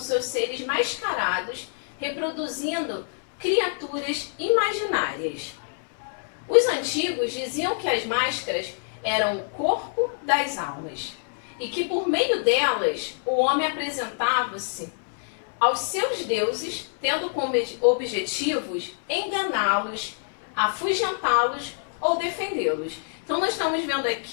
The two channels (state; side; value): silent; right; 61 dB below the other